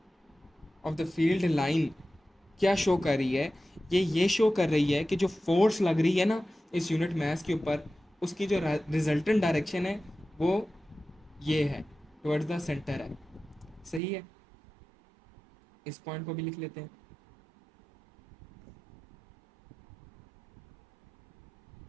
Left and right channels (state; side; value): drops out; left; at 14.0 s